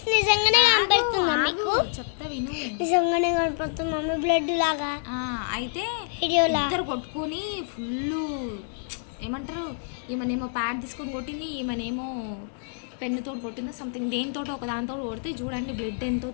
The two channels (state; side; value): silent; right; digital silence